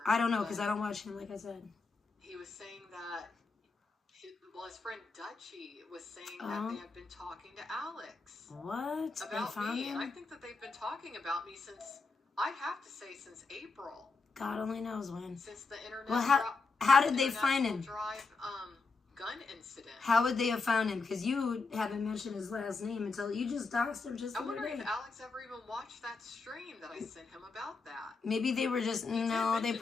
I don't know, because I don't watch him, like I said. He was saying that... his friend Dutchie was saying that they have been talking to Alex. What? About me. And I think that they've been talking about me since, I'd have to say, since April. God only knows when. Since the internet. Well, how did they find him? Drive, gun incident. How would they have found him? Because you haven't mentioned his last name until you just doxed him just the other day. I wonder if Alex ever even watched that stream that I sent him about that. Maybe they were just, no, they've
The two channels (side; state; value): right; quieter; 4.2 dB